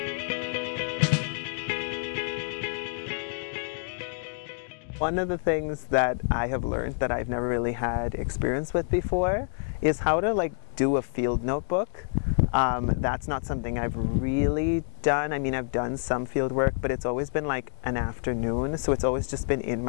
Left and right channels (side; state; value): right; silent; 59 dB below the other